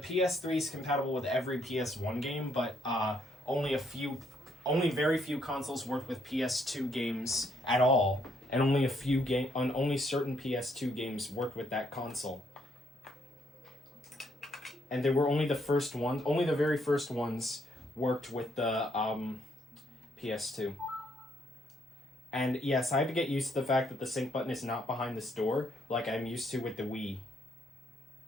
is compatible with every PS1 game, but only very few consoles work with PS2 games at all, and only certain PS2 games worked with that console. And they were only the very first ones worked with the PS2. And yes, I had to get used to the fact that the sync button is not behind this door, like I'm used to with the Wii.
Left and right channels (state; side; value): normal; both; correlation 0.72